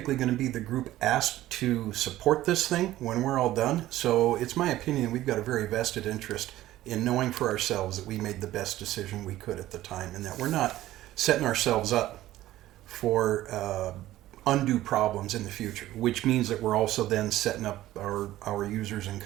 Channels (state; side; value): quieter; left; 14.9 dB